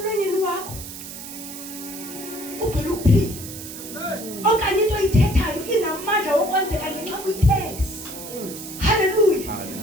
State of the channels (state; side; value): noise; right; hiss, 11 dB below the sound